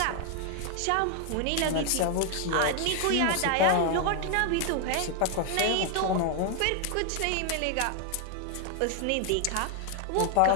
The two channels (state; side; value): different; both; correlation 0.00